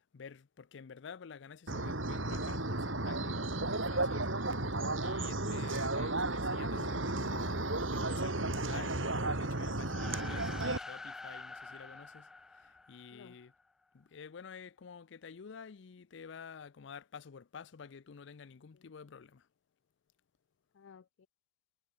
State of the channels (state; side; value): normal; both; correlation 0.01